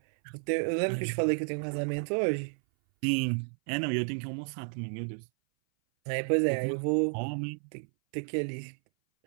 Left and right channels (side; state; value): left; silent; 57 dB below the other